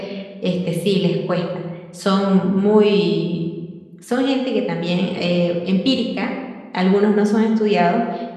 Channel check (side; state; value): both; identical; correlation 1.00